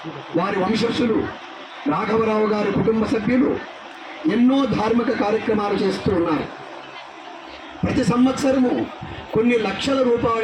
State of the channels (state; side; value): identical; both; correlation 1.00